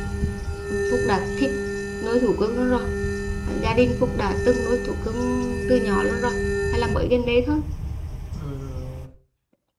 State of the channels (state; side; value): identical; both; correlation 1.00